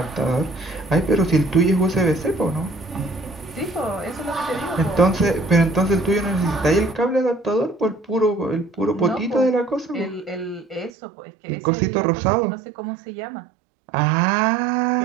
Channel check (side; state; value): left; drops out; at 10.9 s